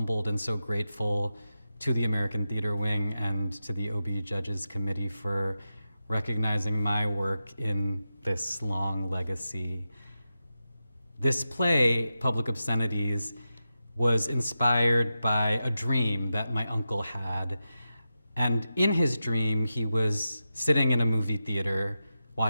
and so grateful to the American Theater Wing and to the Obie Judges Committee for recognizing my work in this long legacy. This play, Public Obscenities, was inspired by a dream that my uncle had. And in his dream, he was sitting in a movie theater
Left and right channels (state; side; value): inverted; both; correlation -0.91